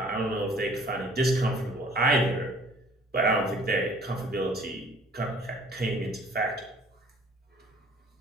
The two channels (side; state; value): both; normal; correlation 0.53